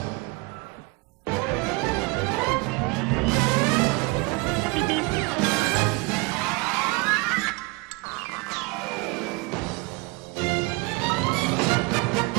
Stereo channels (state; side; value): quieter; left; 26.7 dB